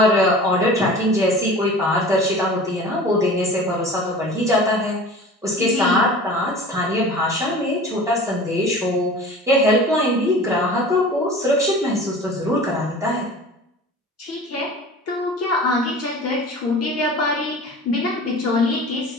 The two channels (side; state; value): both; normal; correlation 0.39